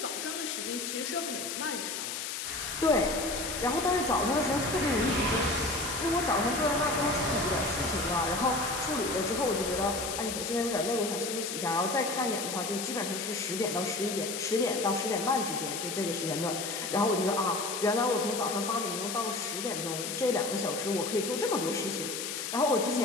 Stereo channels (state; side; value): noise; left; hiss, 4 dB below the sound